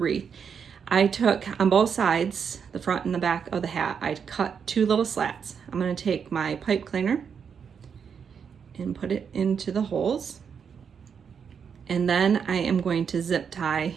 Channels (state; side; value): quieter; left; 6.8 dB